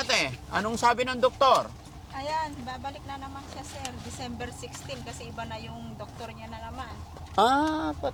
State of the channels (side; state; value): both; identical; correlation 1.00